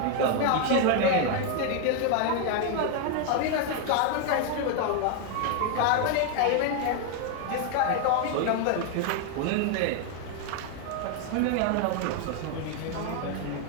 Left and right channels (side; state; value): both; different; correlation 0.00